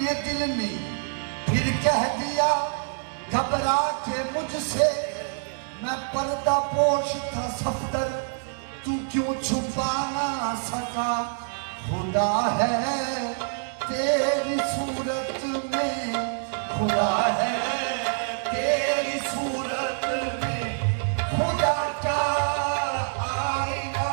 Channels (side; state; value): left; silent; digital silence